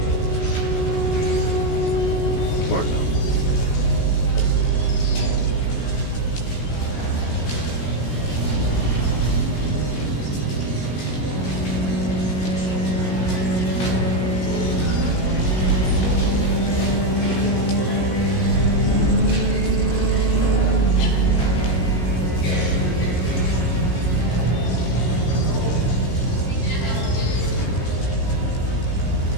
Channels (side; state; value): right; late; 16 ms